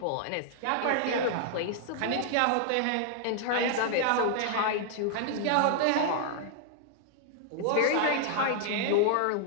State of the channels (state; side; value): different; both; correlation -0.01